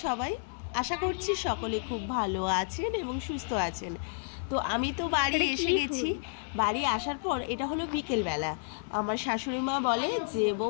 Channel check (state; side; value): silent; right; digital silence